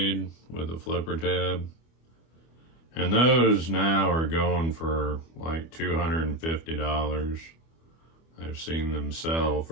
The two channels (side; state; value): right; late; 25 ms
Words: with a flipper tab. And those now are going for like $250. I've seen them sell